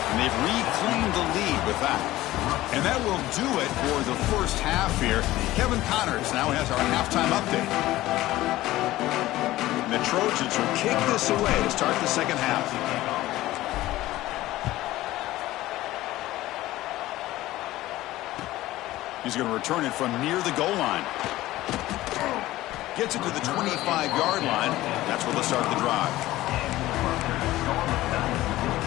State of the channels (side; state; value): right; quieter; 16.4 dB